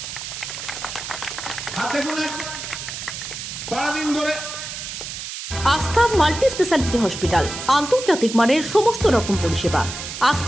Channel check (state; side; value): noise; right; hiss, 8 dB below the sound